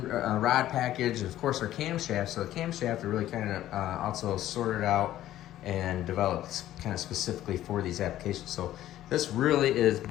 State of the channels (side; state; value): right; quieter; 13.4 dB